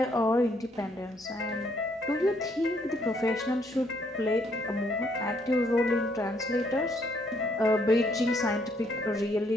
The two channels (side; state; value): both; normal; correlation 0.69